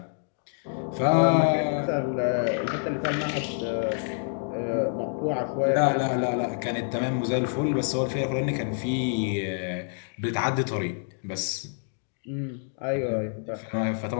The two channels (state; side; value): silent; right; digital silence